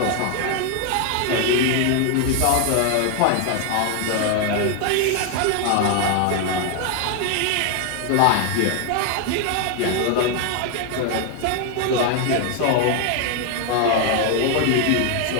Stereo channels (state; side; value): different; both; correlation 0.01